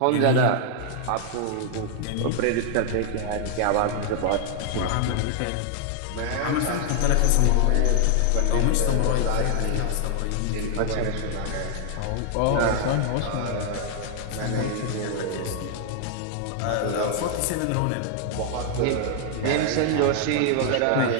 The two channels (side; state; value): both; different; correlation 0.00